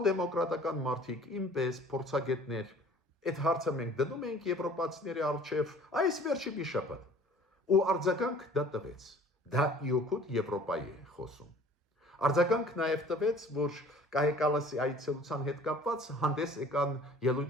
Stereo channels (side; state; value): both; normal; correlation 0.50